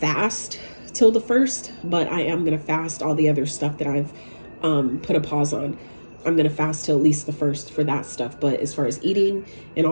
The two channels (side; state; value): both; inverted; correlation -1.00